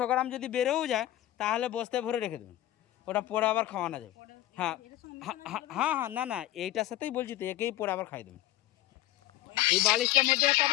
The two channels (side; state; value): right; quieter; 15.0 dB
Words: গ্রাম যদি বেড়েও যায় তাহলে বস্তায় ভরে রেখে দেবেন, ওটা পরে আবার খাওয়ানো যাবে। হ্যাঁ হ্যাঁ হ্যাঁ, না এইটার সাথেই বলছি তো, একেই পরে আবার খাই দেবেন। এই বালিশটার মধ্যে একটা